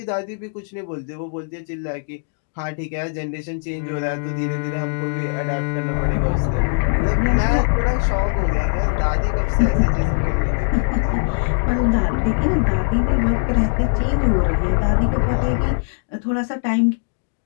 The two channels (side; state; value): right; silent; digital silence